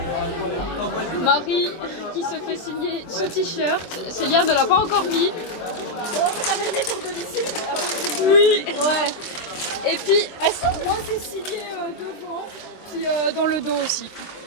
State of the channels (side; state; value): right; late; 24 ms